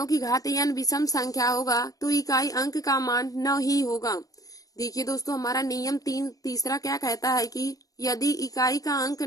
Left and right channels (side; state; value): right; late; 0.17 ms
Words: की घात n विषम संख्या होगा तो इकाई अंक का मान 9 ही होगा। देखिए दोस्तों, हमारा नियम तीसरा क्या कहता है कि यदि इकाई का अंक